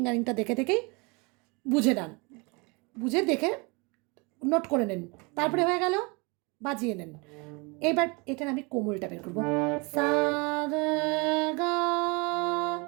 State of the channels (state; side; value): quieter; left; 29.1 dB